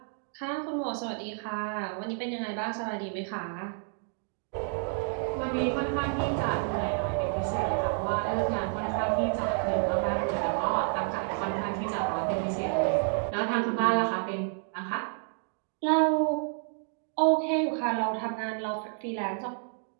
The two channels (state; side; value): silent; left; 58 dB below the other